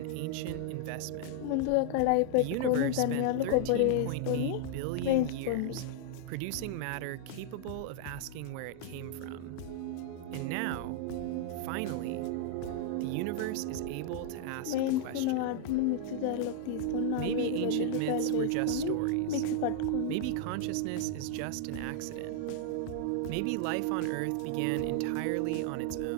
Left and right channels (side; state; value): both; different; correlation -0.01